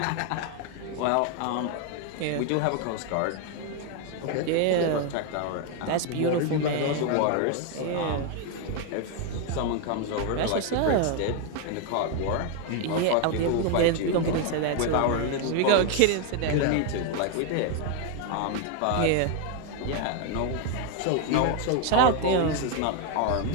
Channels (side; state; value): both; different; correlation 0.01